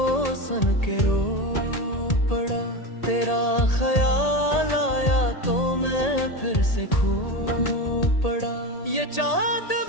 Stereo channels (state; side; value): late; right; 1.8 ms